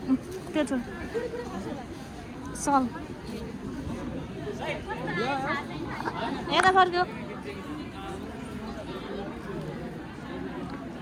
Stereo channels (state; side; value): identical; both; correlation 1.00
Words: त्यो छ सल यता फर्क्यो।